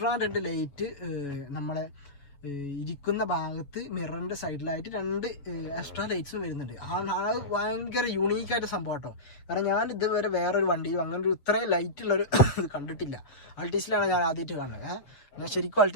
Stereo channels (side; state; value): right; late; 7.3 ms